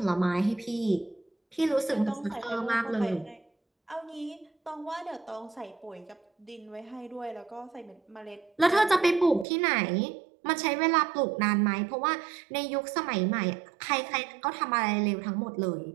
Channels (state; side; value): drops out; left; at 9.5 s